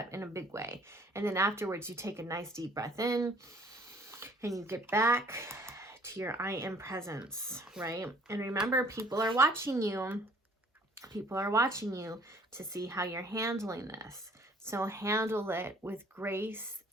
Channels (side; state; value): both; normal; correlation 0.57